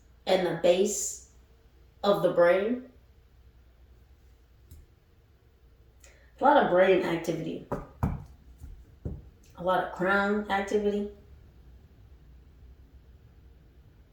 in the base of the brain. A lot of brain activity. A lot of crown activity.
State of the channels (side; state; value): both; identical; correlation 1.00